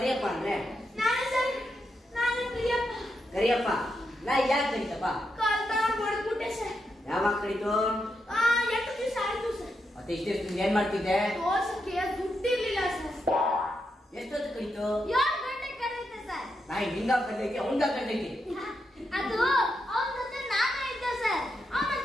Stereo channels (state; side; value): normal; both; correlation 0.84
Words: ಅಂದ್ರೆ? ನಾನು ಸರ್, ನಾನು ಪ್ರಿಯಪ್ಪ. ಕರಿಯಪ್ಪ ನಾ ಯಾಕೆ ಕರಿತಪ್ಪ? ಕಾಲ್ತಾನ ಹೊಡೆದ್ಬಿಟ್ಟೆ ಸರ್. ಯಾವಾಗ ಕರಿತು? 8 ದಿವಸ ಆಯ್ತು ಸರ್. ಮತ್ತೆ ಇಷ್ಟೆಷ್ಟು ಏನ್ ಮಾಡ್ತಿದ್ದೆ? ದೋಸಕ್ಕೆ ದುಡ್ಡಿರ್ಲಿಲ್ಲ ಸರ್. ಎಷ್ಟೊತ್ತು ಕರಿತು? 7 ಗಂಟೆಗೆ ಕರೆಯುತ್ತೆ ಸರ್. ನಾಯಿ ನಿಂಗ ಕರ್ತೈತಿ ಅವಂಗ ಕರ್ತೈತಿ. ಅದು ಅವನ ಜೊತೆ ನಾನೇ ಇದ್ದೆ ಸರ್. ಅವನ